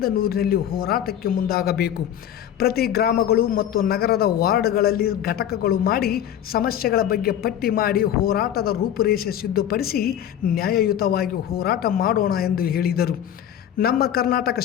ಹೋರಾಟಕ್ಕೆ ಮುಂದಾಗಬೇಕು. ಪ್ರತಿ ಗ್ರಾಮಗಳು ಮತ್ತು ನಗರದ ವಾರ್ಡ್ಗಳಲ್ಲಿ ಘಟಕಗಳು ಮಾಡಿ ಸಮಸ್ಯೆಗಳ ಬಗ್ಗೆ ಪಟ್ಟಿ ಮಾಡಿ ಹೋರಾಟದ ರೂಪುರೇಷೆ ಸಿದ್ಧಪಡಿಸಿ ನ್ಯಾಯಯುತವಾಗಿ ಹೋರಾಟ ಮಾಡೋಣ ಎಂದು ಹೇಳಿದರು. ನಮ್ಮ ಕರ್ನಾಟಕ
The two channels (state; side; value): quieter; right; 10.4 dB